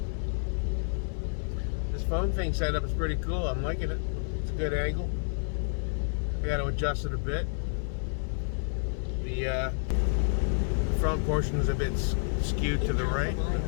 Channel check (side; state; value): right; silent; digital silence